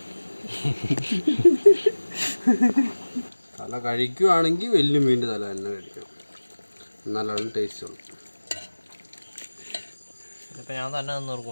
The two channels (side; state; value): both; inverted; correlation -1.00